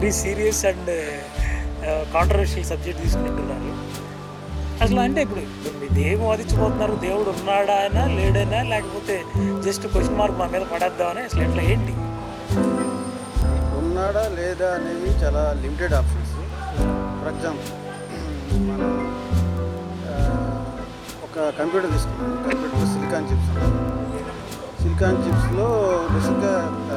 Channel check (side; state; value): both; identical; correlation 1.00